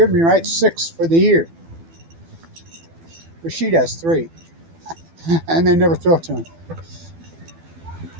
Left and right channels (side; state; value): left; late; 12 ms